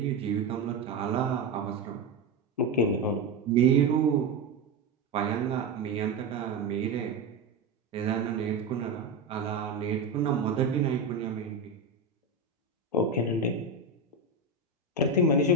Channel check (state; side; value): quieter; left; 3.4 dB